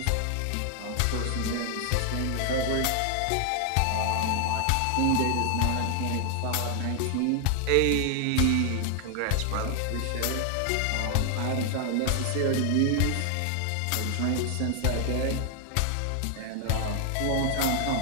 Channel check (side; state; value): both; different; correlation 0.00